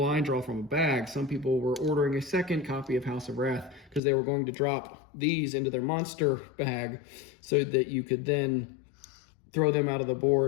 draw from a bag, some people were ordering a second copy of House of Rath because they were going to drop these into their monster bag so that you could then throw them out of the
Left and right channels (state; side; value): drops out; right; at 4.0 s